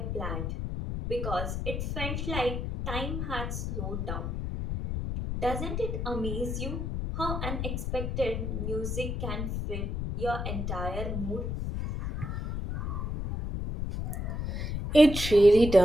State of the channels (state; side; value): noise; left; rumble, 3 dB below the sound